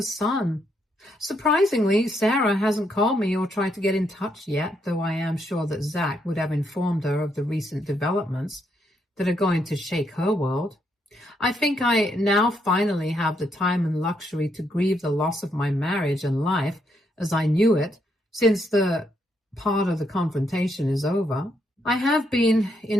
sun. Surprisingly, Sarah hasn't called me or tried to get in touch yet, though I am sure that Zack would have informed her of the recent developments that are going to shake her world. I think I now finally have the time and luxury to grieve the loss of my marriage and life as I knew it, since the part of the confrontation is over. I have been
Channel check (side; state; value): both; normal; correlation 0.76